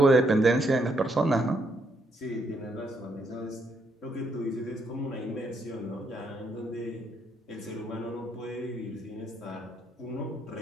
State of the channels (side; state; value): both; normal; correlation 0.75